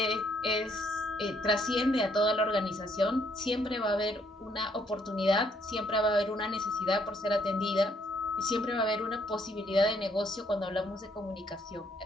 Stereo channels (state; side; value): normal; both; correlation 0.69